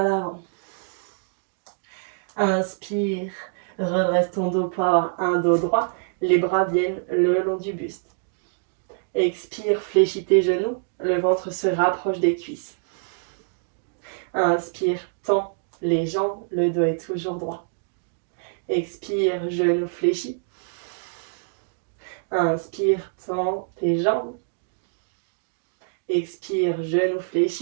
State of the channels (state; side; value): silent; left; digital silence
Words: l'avant. Inspire, redresse ton dos pour avoir un dos droit. Les bras viennent le long du buste. Expire, fléchis tes genoux. Le ventre se rapproche des cuisses. Inspire, tends les jambes. Le dos est toujours droit. Expire, genoux fléchis. Inspire, tends tes jambes. Expire, genoux